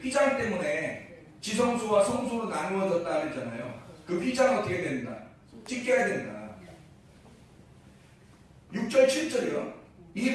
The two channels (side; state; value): both; identical; correlation 1.00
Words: 휘장 때문에 지성소와 성소로 나누어졌다 그랬잖아요. 그 휘장은 어떻게 된다? 찢겨야 된다. 6절 7절이요. 이